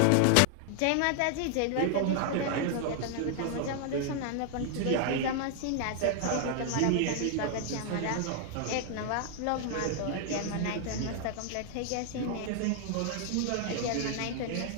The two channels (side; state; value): both; different; correlation 0.00